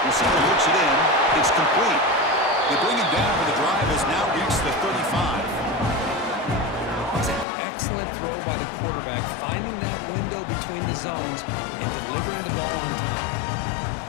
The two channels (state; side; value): drops out; right; at 7.5 s